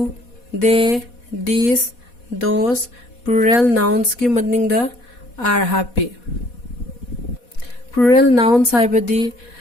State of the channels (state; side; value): late; right; 4.2 ms